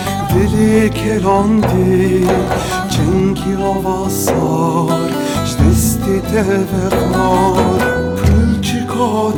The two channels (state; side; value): identical; both; correlation 1.00